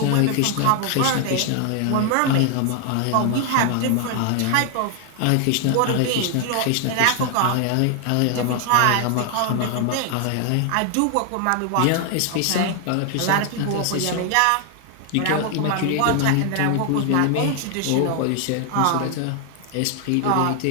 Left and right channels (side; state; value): both; different; correlation 0.00